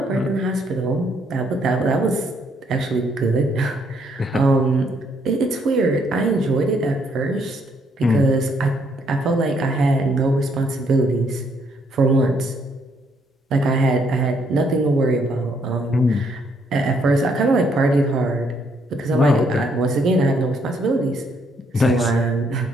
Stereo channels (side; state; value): both; normal; correlation 0.70